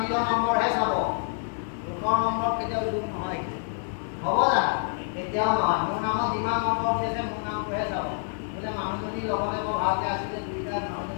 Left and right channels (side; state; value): right; silent; digital silence